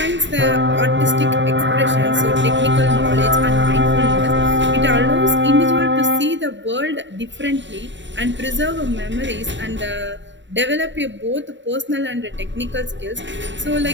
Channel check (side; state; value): left; late; 0.54 ms